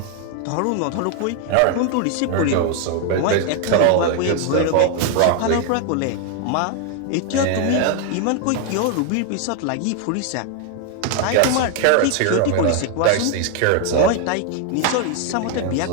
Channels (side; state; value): both; different; correlation 0.00